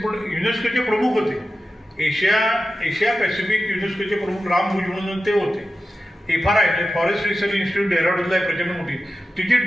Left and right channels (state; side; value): normal; both; correlation 0.92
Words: युनेस्कोचे प्रमुख होते, एशिया पॅसिफिक युनेस्कोचे प्रमुख राम भुज म्हणून ते होते. FRI फॉरेस्ट रिसर्च इन्स्टिट्यूट डेहराडूनला आहे प्रचंड मोठी, तिचे